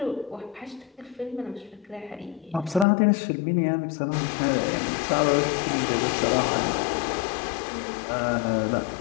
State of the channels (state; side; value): drops out; right; at 2.9 s